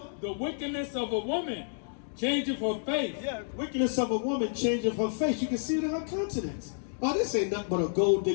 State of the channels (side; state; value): right; silent; digital silence